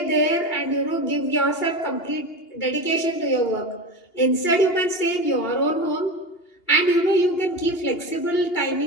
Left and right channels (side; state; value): right; late; 2.8 ms